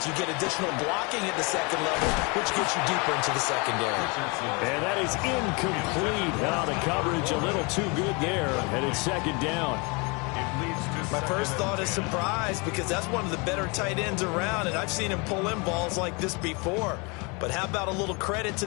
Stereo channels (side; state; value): right; quieter; 30.0 dB